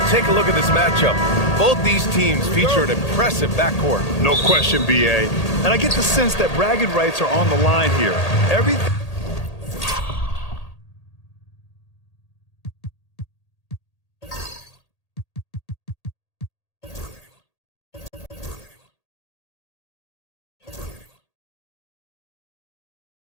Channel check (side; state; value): right; late; 1.8 ms